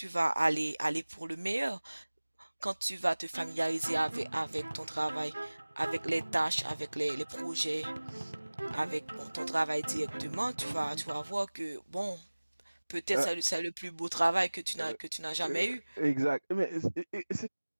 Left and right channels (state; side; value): inverted; both; correlation -1.00